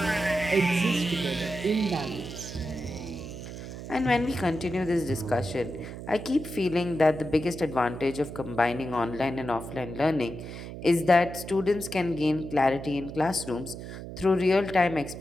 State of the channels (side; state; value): right; noise; hum, 10 dB below the sound